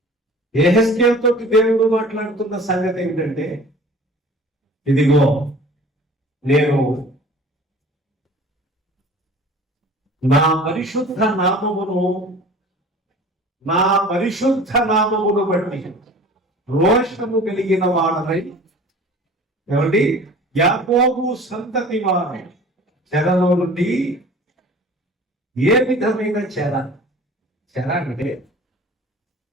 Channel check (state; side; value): normal; both; correlation 0.45